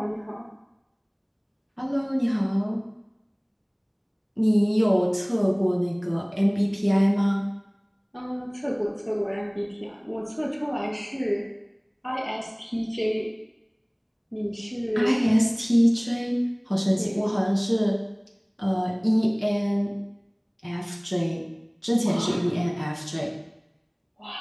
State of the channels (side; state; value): both; identical; correlation 1.00